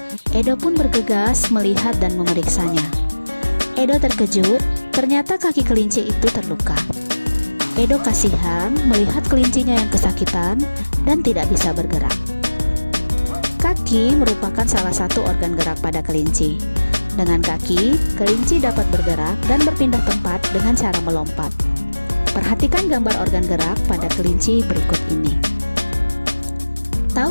Edo pun bergegas melihat dan memeriksanya. Edo terkejut, ternyata kaki kelinci itu terluka. Edo kasihan melihat kelincinya yang kesakitan dan tidak bisa bergerak. Kaki merupakan salah satu organ gerak pada kelinci. Dengan kaki, kelinci dapat bergerak dan berpindah tempat dengan cara melompat. Perhatikan gambar organ gerak pada kelinci berikut ini.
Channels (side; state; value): both; inverted; correlation -1.00